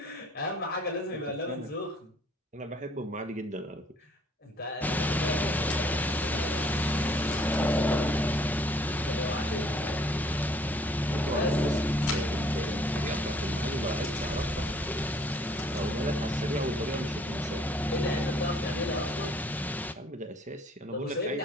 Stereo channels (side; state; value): both; normal; correlation 0.60